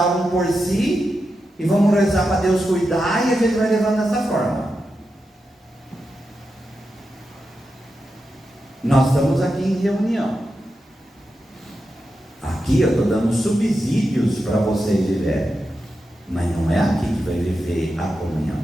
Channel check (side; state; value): both; normal; correlation 0.89